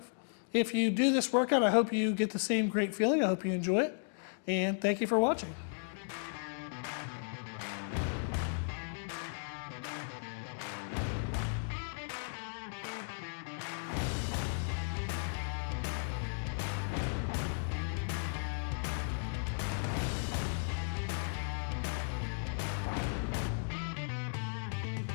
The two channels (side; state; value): right; silent; digital silence